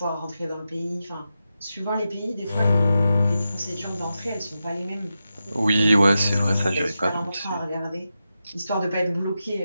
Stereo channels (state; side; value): inverted; both; correlation -0.90